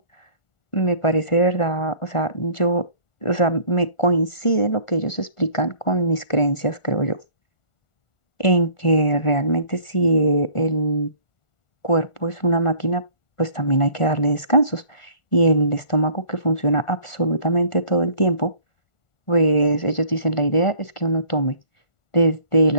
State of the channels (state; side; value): late; right; 1.4 ms